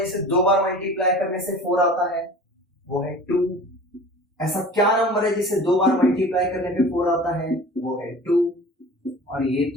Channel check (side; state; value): both; normal; correlation 0.41